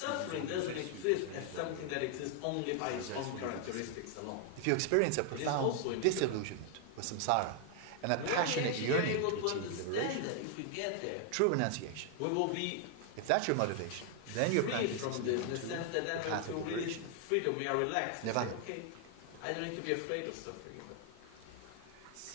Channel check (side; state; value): both; different; correlation 0.00